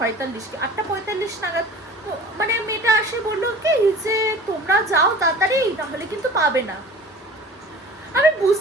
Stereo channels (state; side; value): normal; both; correlation 0.43